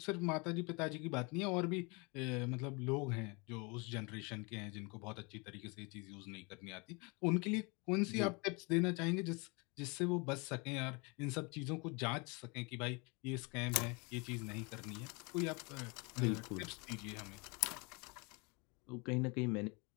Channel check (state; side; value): quieter; right; 30.0 dB